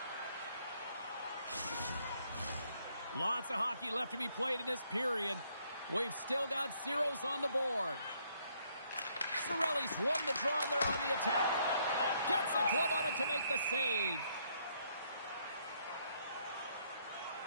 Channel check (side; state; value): both; inverted; correlation -0.70